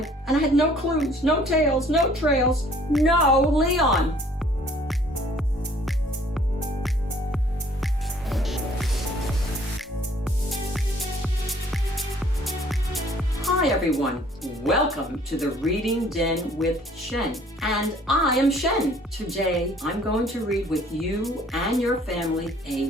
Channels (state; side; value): normal; both; correlation 0.57